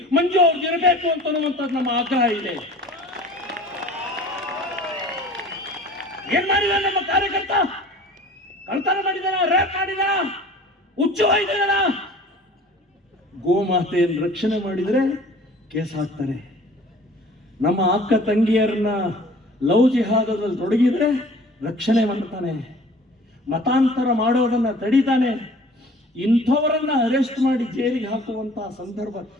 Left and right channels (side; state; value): both; normal; correlation 0.47